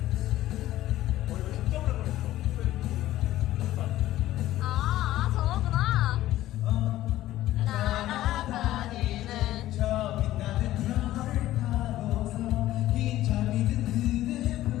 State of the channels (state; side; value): quieter; right; 14.7 dB